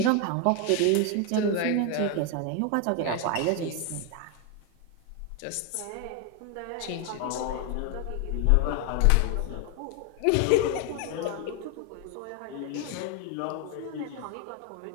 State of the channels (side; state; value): both; different; correlation 0.01